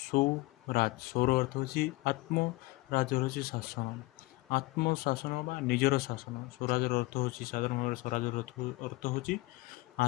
ସ୍ୱର ଅର୍ଥ ହେଉଛି ଆତ୍ମ, ରାଜ ହେଉଛି ଶାସନ, ଆତ୍ମଶାସନ ବା ନିଜର ଶାସନ। ସ୍ୱରାଜର ଅର୍ଥ ହେଉଛି ସାଧାରଣ ଭାବରେ ସ୍ୱରାଜର ଅର୍ଥ ହେଉଛି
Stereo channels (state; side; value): quieter; right; 21.6 dB